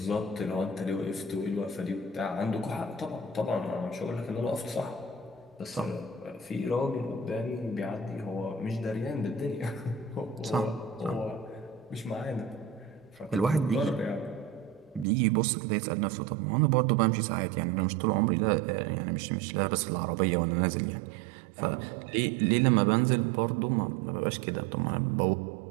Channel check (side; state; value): left; drops out; at 15.1 s